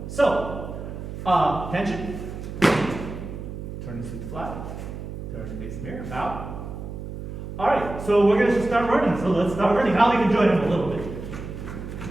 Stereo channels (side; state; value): right; noise; hum, 9 dB below the sound